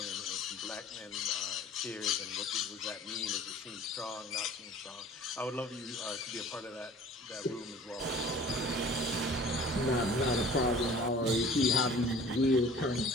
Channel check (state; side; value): normal; both; correlation 0.46